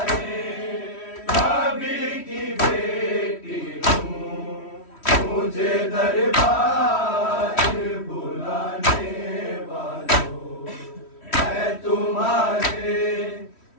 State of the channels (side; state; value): right; late; 3.1 ms